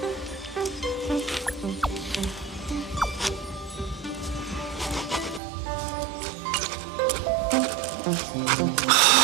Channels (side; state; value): left; drops out; at 5.4 s